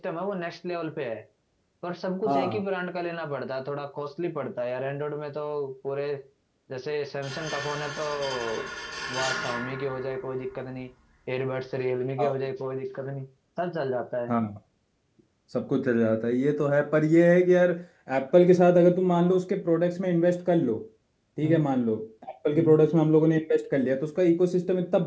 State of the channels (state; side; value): identical; both; correlation 1.00